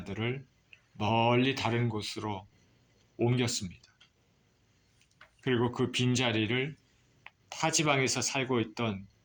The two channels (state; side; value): identical; both; correlation 1.00